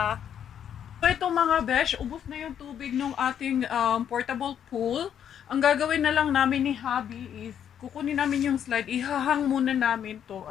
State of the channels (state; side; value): quieter; right; 9.1 dB